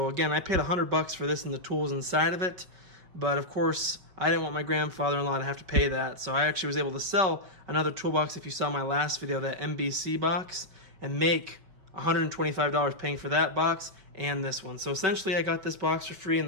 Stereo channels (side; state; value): left; late; 5.3 ms